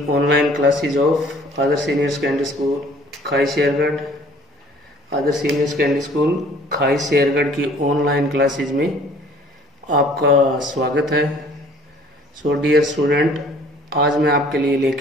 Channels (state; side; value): normal; both; correlation 0.54